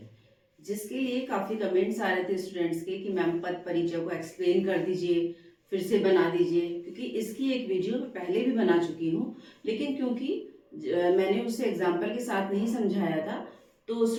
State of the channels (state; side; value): identical; both; correlation 1.00